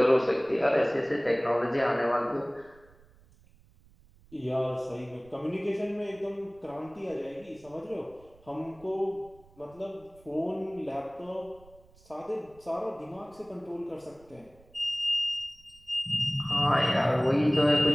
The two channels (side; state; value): right; noise; rumble, 27 dB below the sound